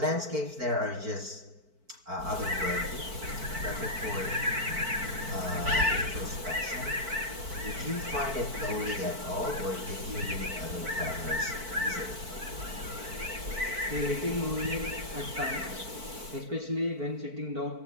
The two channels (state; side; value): late; left; 4.5 ms